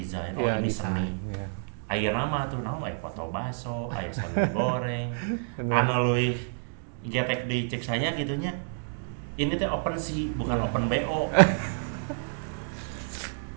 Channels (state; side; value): silent; left; digital silence